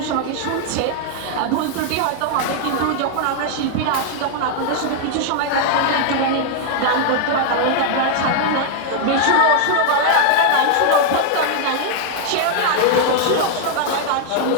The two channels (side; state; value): both; different; correlation 0.00